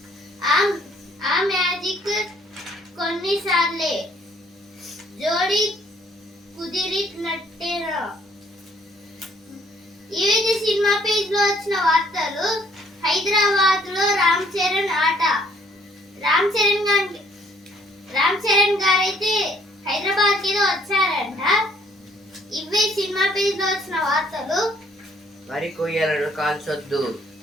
ఆ మ్యాజిక్ కొన్నిసార్లే జోడి కుదిరినట్టేనా. ఇవైతే సినిమా పేజ్ లో వచ్చిన వార్తలు. హైదరాబాద్ లో రామ్ చరణ్ ఆట. రామ్ చరణ్ గారైతే హైదరాబాద్ కి వచ్చారంట. ఇవే సినిమా పేజ్ లో వచ్చిన వార్తలు. వరి కొయ్యలను కాల్చొద్దు,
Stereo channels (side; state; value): both; normal; correlation 0.63